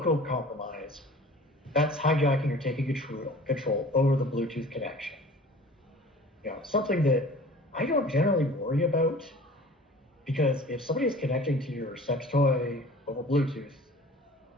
compromise, that's hijacking or taking control over the Bluetooth connection. Something that I don't generally worry about, because if somebody is connecting to your sex toy over Bluetooth,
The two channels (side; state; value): both; normal; correlation 0.45